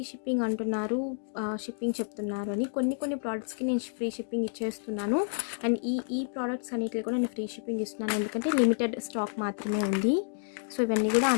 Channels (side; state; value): right; silent; digital silence